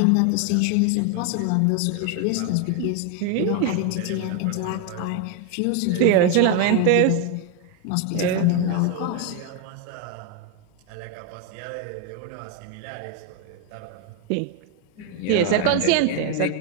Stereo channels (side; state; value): both; different; correlation 0.01